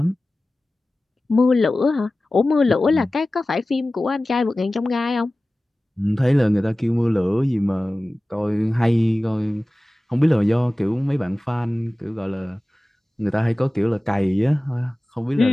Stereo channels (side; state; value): both; normal; correlation 0.97